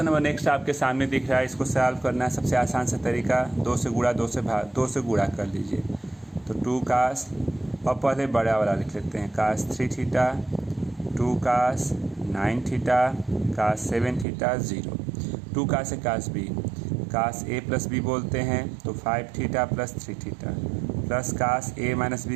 नंबर नेक्स्ट आपके सामने दिख रहा है, इसको सॉल्व करना है सबसे आसान सा तरीका, 2 से गुणा 2 से गुणा कर लीजिए। तो 2 कास, और पहले बड़ा वाला लिख लेते हैं, cos 3 theta 2 cos 9 theta cos 7 theta 0, 2 cos है cos B, cos A plus B बोलते हैं तो 5 theta plus 3 theta, plus cos A minus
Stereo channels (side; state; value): left; drops out; at 14.2 s